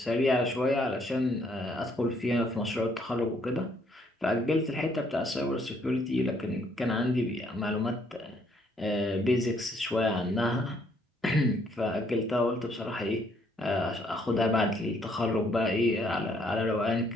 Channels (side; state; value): both; normal; correlation 0.68